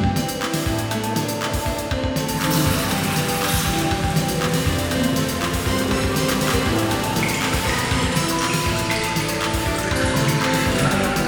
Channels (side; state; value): both; identical; correlation 1.00